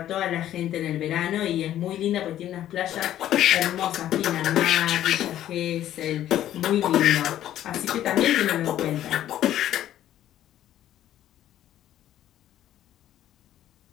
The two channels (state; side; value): quieter; right; 12.2 dB